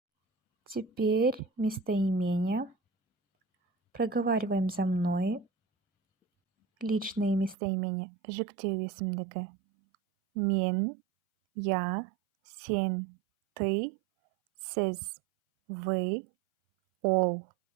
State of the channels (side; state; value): left; drops out; at 7.6 s